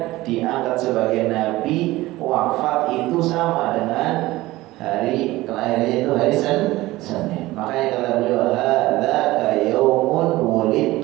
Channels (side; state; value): left; quieter; 18.3 dB